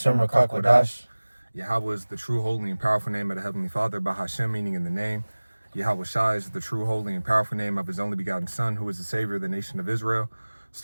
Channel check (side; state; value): both; inverted; correlation -1.00